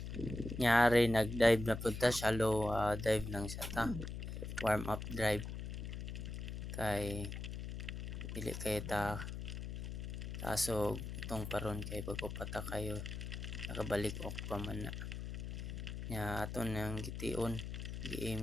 Nyari nag-dive na punta, shallow dive lang siya ta. Warm up dive. Kay dili kay ta tasog itong paron kay bago pata kayo nakabalik ok pa man na. Nya aton nang gitiun,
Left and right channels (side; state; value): left; noise; hum, 6 dB below the sound